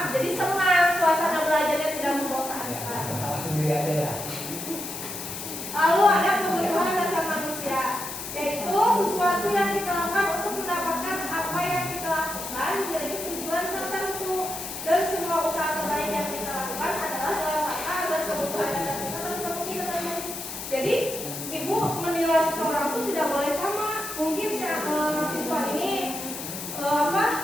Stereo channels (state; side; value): noise; left; hiss, 8 dB below the sound